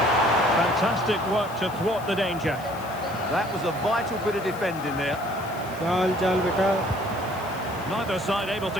Fantastic work to thwart the danger. That was a vital bit of defending there. Neither side able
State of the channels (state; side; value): noise; left; hiss, 20 dB below the sound